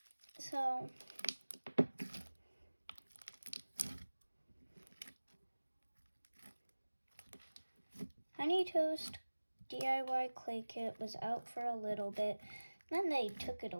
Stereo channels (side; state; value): both; inverted; correlation -1.00